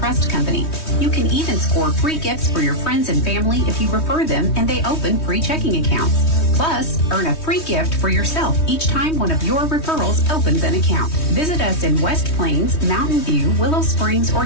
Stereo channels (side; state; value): right; late; 3.2 ms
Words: Company. You can even score free gifts for your friends and family if you refer them and they open free checking accounts. Plus, earn a free gift for yourself each time one of your referrals opens an account. Visit us in West Plains, Mountain View, Willow Springs, or